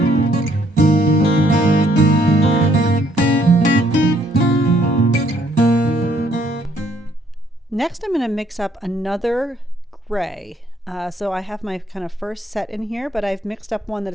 Next, I'm going to mix up another gray. So I have my kind of first set in here, but I've mixed up one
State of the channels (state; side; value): normal; both; correlation 0.66